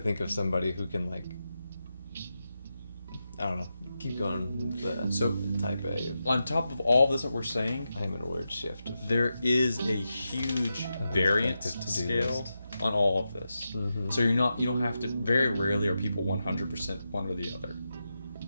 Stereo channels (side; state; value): both; inverted; correlation -0.89